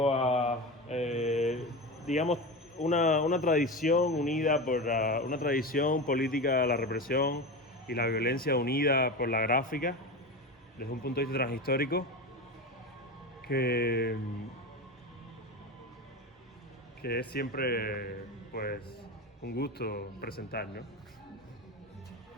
digamos una tradición unida por una tradición política de la represión y la violencia unida por la gráfica desde un punto de vista transhistórico que es siempre pues un gusto presentar, ¿no?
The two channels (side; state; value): both; normal; correlation 0.24